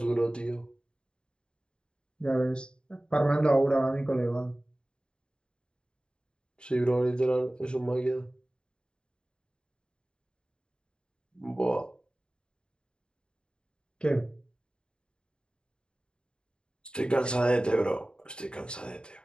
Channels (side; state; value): right; late; 0.051 ms